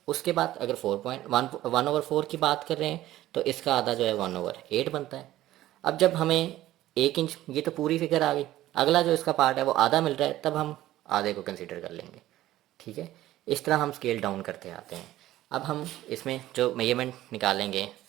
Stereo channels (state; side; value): quieter; left; 14.7 dB